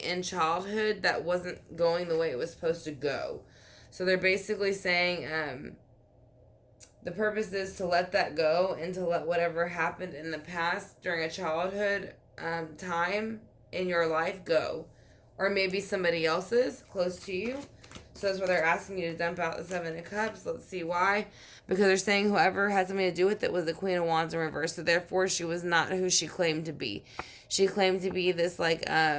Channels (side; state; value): both; identical; correlation 1.00